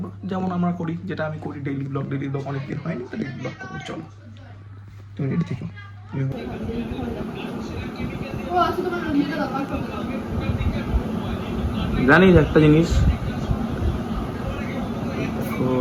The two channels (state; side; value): identical; both; correlation 1.00